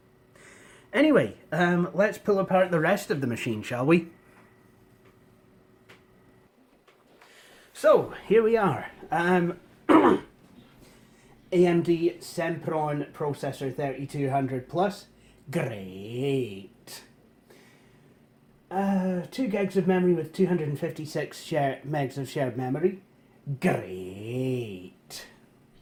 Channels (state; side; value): identical; both; correlation 1.00